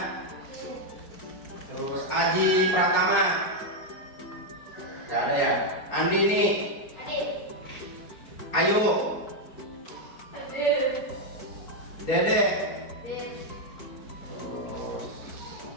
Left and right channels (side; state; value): right; late; 4.4 ms